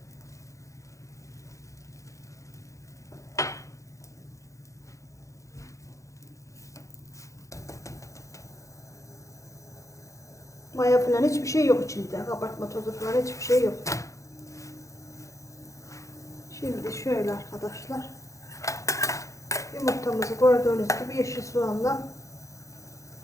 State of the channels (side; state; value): right; late; 0.15 ms